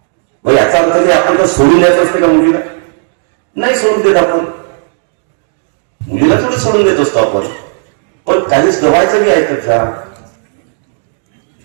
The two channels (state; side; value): silent; left; digital silence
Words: मग याचा अर्थ की आपण तर सोडून द्यायचं असते का मुलीला? नाही सोडून देत आपण, मुलीला थोडं सोडून देत असतो आपण, पण काहीच गवायचं बी ऐकत जा।